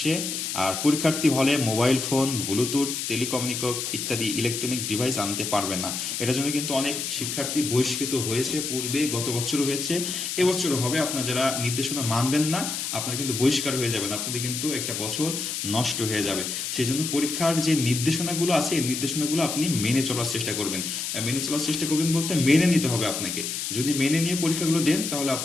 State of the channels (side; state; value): left; noise; hiss, 3 dB below the sound